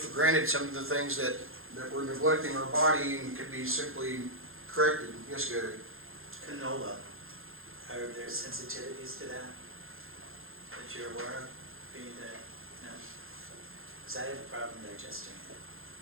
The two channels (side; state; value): left; late; 0.60 ms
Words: granted some of the things that we're neglecting in our body and could be simply corrected. Yes, Gary? Canola, are there sensitivities to that you're aware of? No? Because I have a problem digesting it.